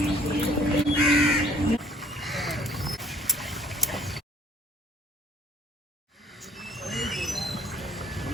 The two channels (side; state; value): both; normal; correlation 0.57